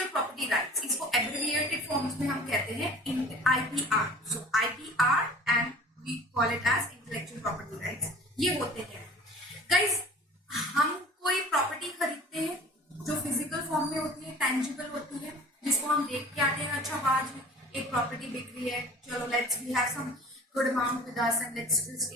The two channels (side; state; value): both; normal; correlation 0.45